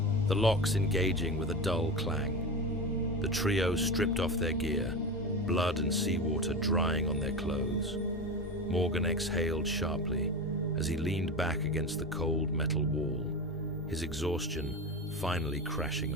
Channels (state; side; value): normal; both; correlation 0.23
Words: the locks engaging with a dull clang. The trio stripped off their gear, blood and seawater drying on their clothes. Morgan exhaled sharply as he leaned back against the cold metal wall, his exhaustion finally crashing